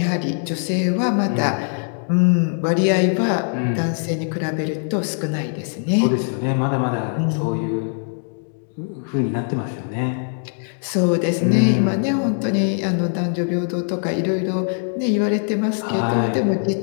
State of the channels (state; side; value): silent; right; 56 dB below the other